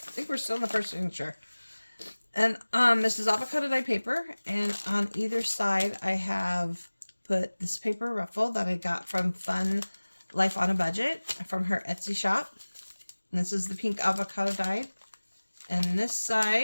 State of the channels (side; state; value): both; inverted; correlation -1.00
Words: think we're still in the first signature. And this is avocado dye paper, and on either side I have put this paper ruffle that I got from Fun Life on a Budget from her Etsy shop. And this is the pink avocado dyed. And this